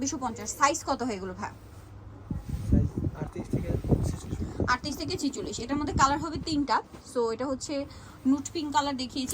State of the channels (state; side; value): identical; both; correlation 1.00